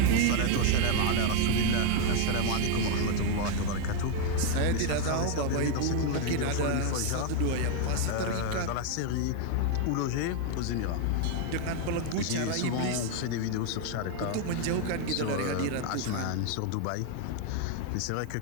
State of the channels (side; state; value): both; different; correlation 0.00